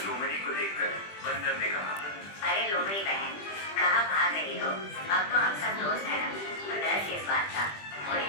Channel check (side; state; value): right; late; 20 ms